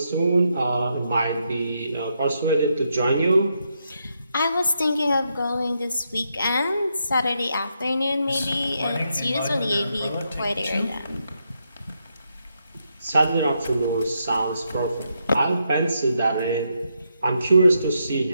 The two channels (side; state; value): both; inverted; correlation -0.81